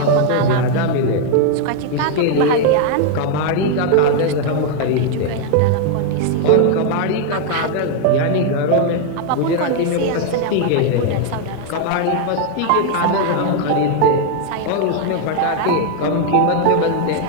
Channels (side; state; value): both; different; correlation 0.00